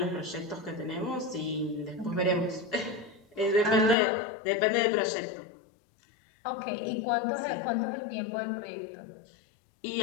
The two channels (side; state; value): right; drops out; at 4.0 s